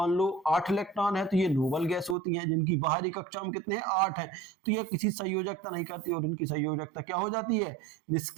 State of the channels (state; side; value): drops out; left; at 2.1 s